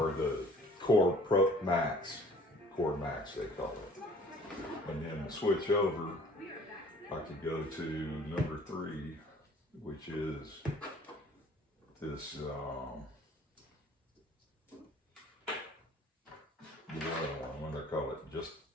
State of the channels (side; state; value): both; normal; correlation 0.52